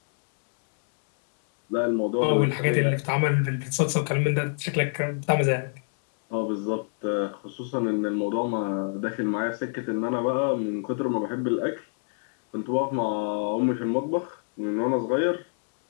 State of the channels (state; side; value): silent; right; digital silence